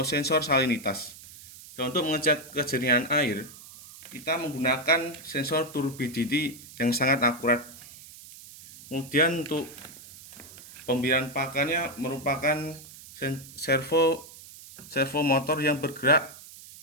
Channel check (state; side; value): noise; right; hiss, 18 dB below the sound